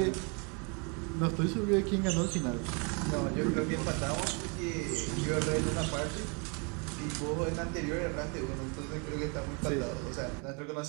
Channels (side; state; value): left; quieter; 34.1 dB